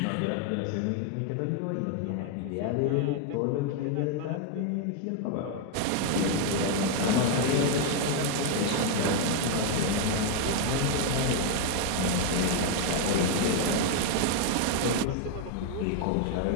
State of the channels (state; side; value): different; both; correlation 0.01